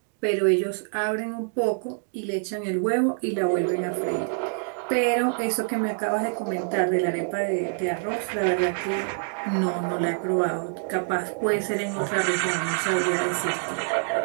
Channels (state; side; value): silent; left; digital silence